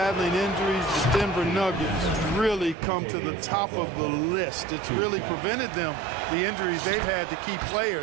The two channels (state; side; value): drops out; left; at 2.8 s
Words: injuries, the Denver Nuggets really come to the top of the list. It's really prevented them, the injuries they've had, to keep